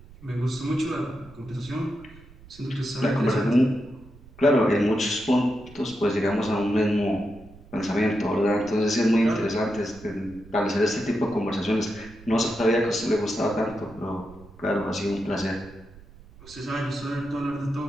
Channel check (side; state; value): right; noise; rumble, 21 dB below the sound